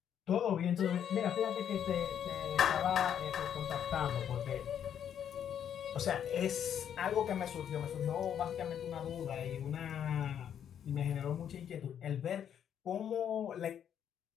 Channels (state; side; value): quieter; right; 9.1 dB